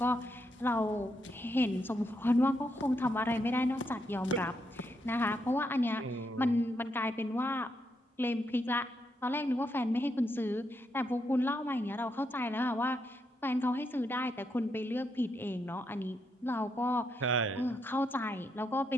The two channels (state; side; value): normal; both; correlation 0.80